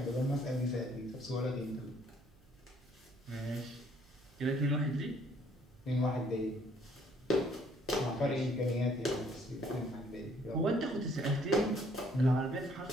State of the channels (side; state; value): right; noise; hum, 28 dB below the sound